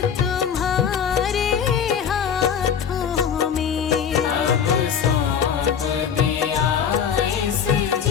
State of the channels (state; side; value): quieter; right; 7.7 dB